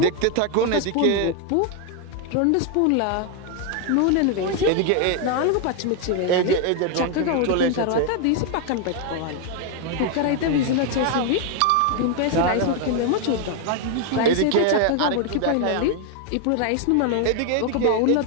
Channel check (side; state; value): both; different; correlation 0.01